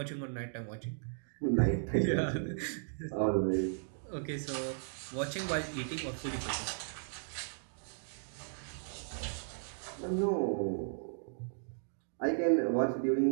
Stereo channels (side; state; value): left; silent; digital silence